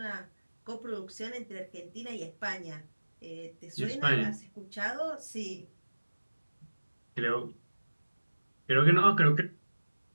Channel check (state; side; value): inverted; both; correlation -1.00